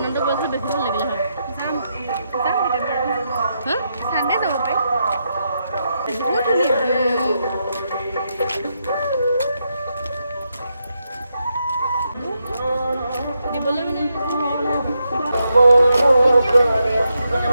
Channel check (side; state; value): both; inverted; correlation -0.83